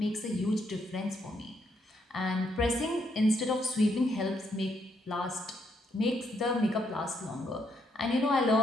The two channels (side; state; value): both; normal; correlation 0.75